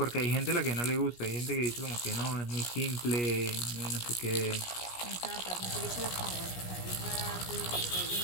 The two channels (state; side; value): late; right; 17 ms